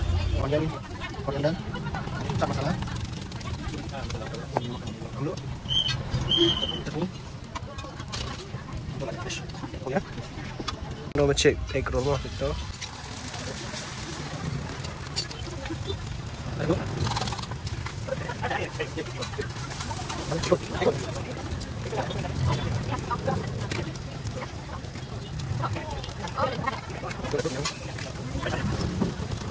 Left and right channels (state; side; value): identical; both; correlation 1.00